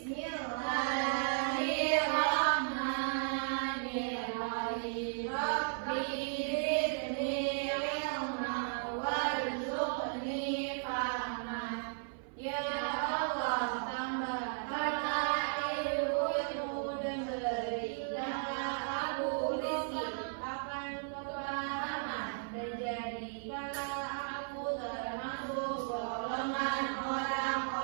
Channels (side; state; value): left; silent; 54 dB below the other